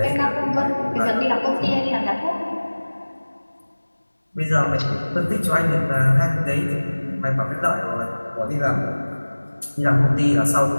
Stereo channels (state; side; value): inverted; both; correlation -1.00